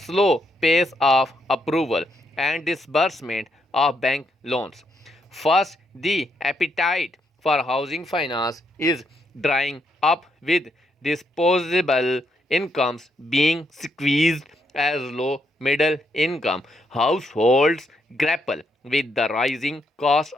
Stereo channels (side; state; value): both; normal; correlation 0.77